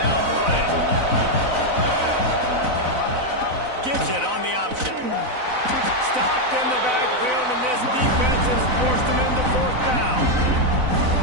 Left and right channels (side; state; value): left; late; 4.0 ms